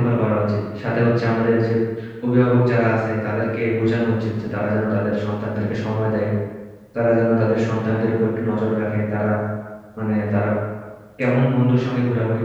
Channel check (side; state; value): both; identical; correlation 1.00